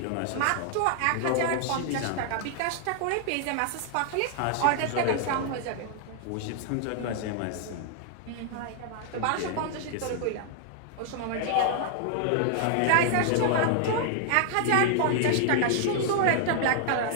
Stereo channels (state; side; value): different; both; correlation -0.01